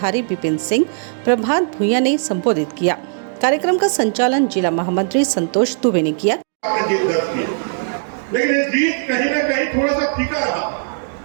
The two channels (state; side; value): silent; left; digital silence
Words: विपिन सिंह, प्रभात भूया ने संबोधित किया। कार्यक्रम का संचालन जिला महामंत्री संतोष दुबे ने किया। लेकिन ये जीत कहीं न कहीं थोड़ा सा फीका रहा।